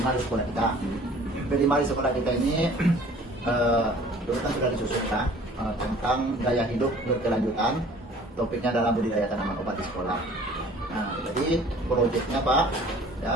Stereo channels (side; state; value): both; normal; correlation 0.50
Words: sekolah kita. P5 di sekolah kita ini dulu kan sudah disusun tentang gaya hidup berkelanjutan. Topiknya adalah budidaya tanaman obat di sekolah. Nah, jadi proyeknya Pak,